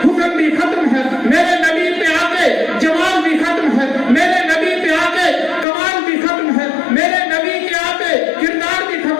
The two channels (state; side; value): drops out; right; at 5.7 s